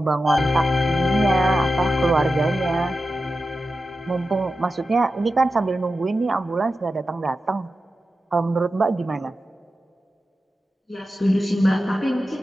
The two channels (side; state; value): both; normal; correlation 0.92